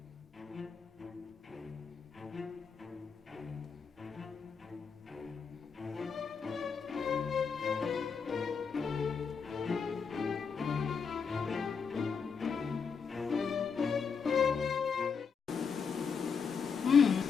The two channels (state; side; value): quieter; right; 5.9 dB